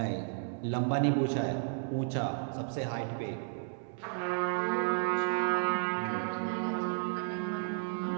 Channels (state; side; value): silent; left; digital silence